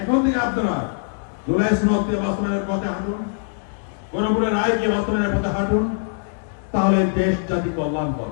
এখন থেকে আপনারা জুলাই সনদকে বাস্তবায়নের পথে হাঁটুন, গণভোটের রায়কে বাস্তবায়নের পথে হাঁটুন, তাহলে দেশ জাতি কল্যাণ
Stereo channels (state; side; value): silent; right; digital silence